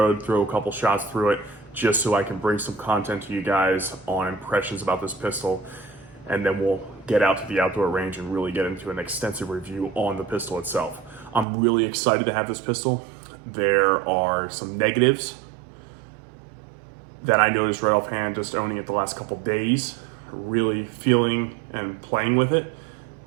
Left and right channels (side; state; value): left; drops out; at 11.5 s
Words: throw a couple shots through it, just so I can bring some content to you guys on impressions about this pistol. And then we'll get out to the outdoor range and really get into an extensive review on the pistol itself. I'm really excited to have this pistol. There are some negatives that I noticed right offhand just owning it the last couple days, really feeling and playing with it,